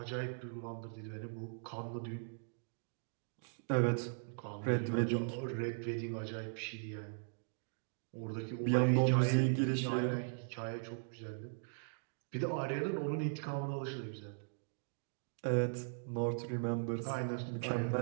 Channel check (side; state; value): left; silent; digital silence